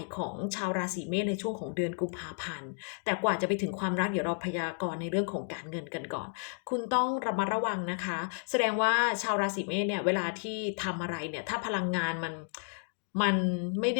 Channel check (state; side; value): silent; right; 56 dB below the other